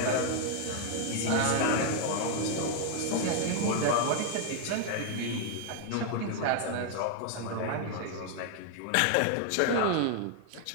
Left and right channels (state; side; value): different; both; correlation 0.00